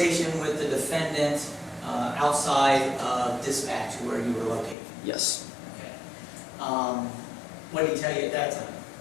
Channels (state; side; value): drops out; right; at 4.8 s